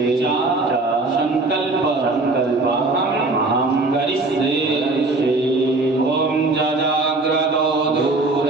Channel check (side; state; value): left; quieter; 3.2 dB